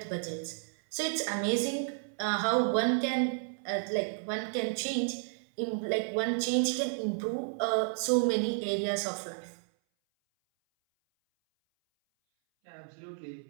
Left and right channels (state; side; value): silent; left; 57 dB below the other